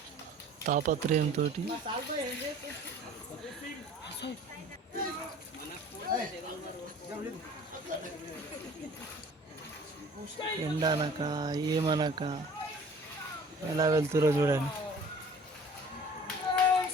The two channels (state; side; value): normal; both; correlation 0.48